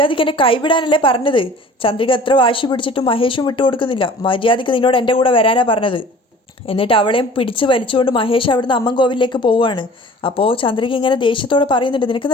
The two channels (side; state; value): both; normal; correlation 0.46